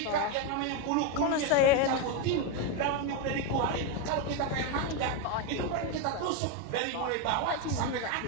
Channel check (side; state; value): both; different; correlation 0.03